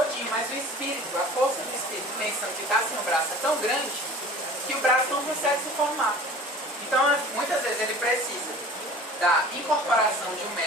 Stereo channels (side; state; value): both; normal; correlation 0.43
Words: mas o espírito, a força do espírito, pensando que está sem o braço, é tão grande que o braço não consegue se formar. Então, muitas vezes ele precisa da incorporação de um